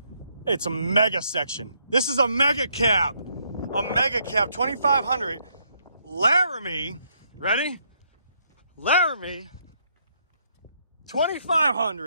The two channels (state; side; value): inverted; both; correlation -0.73